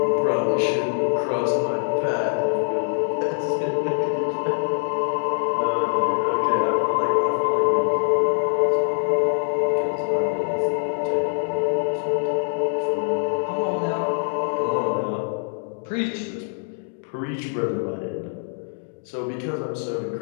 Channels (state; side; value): silent; right; 63 dB below the other